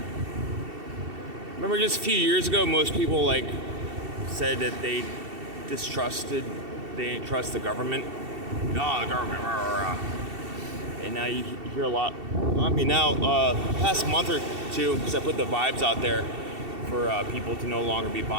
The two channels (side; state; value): left; late; 2.7 ms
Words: Remember just a few years ago, most people said that they didn't trust the government. Oh, the government, rah, rah, rah. And now you hear a lot. Past month or two, because I put the vibes out there for people to no longer be